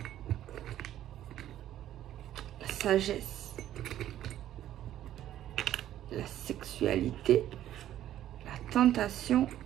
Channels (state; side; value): quieter; left; 12.2 dB